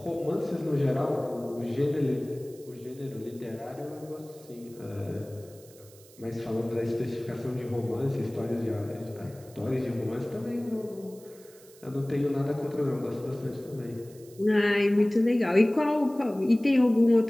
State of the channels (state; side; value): noise; right; hiss, 24 dB below the sound